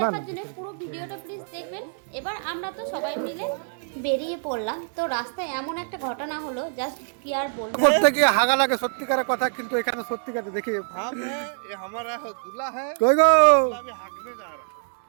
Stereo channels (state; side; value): silent; left; digital silence